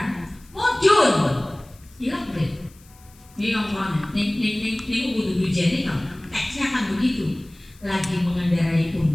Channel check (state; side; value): noise; left; hiss, 27 dB below the sound